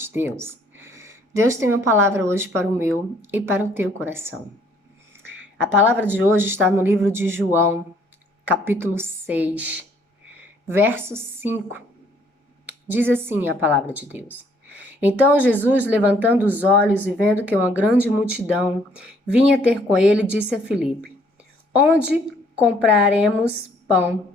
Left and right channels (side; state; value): both; normal; correlation 0.63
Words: Deus? Deus tem uma palavra hoje para o meu e para o teu coração. A palavra de hoje está no livro de João, capítulo 6, verso 5. Diz assim a palavra de Deus. Então Jesus, levantando os olhos e vendo que uma grande multidão vinha ter com ele, disse a Filipe: Onde compraremos pão